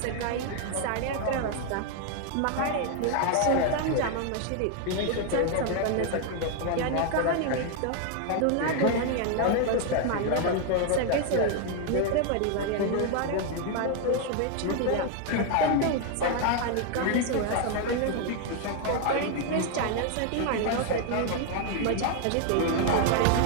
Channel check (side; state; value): both; different; correlation 0.00